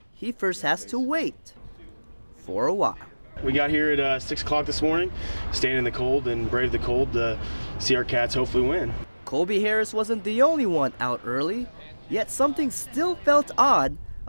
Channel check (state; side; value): inverted; both; correlation -1.00